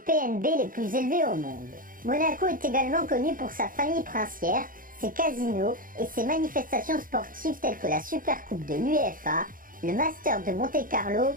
les plus élevés au monde. Monaco est également connu pour sa famille princière, ses casinos et ses manifestations sportives telles que la Supercoupe de l'UEFA, le Master de Monte-Carlo,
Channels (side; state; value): left; late; 0.40 ms